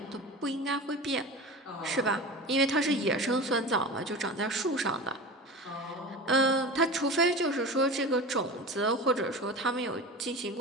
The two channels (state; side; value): normal; both; correlation 0.31